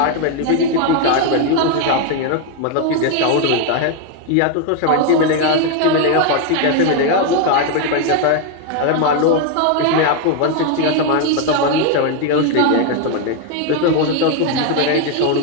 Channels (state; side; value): different; both; correlation 0.01